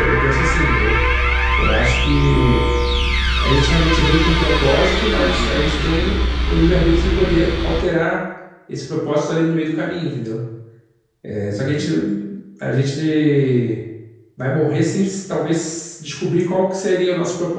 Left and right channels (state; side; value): identical; both; correlation 1.00